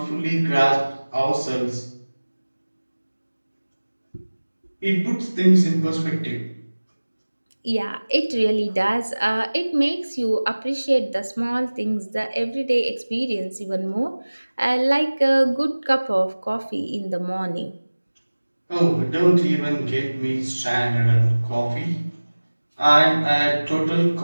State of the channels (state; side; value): inverted; both; correlation -1.00